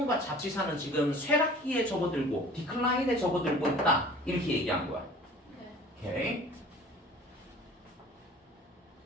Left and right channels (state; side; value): normal; both; correlation 0.46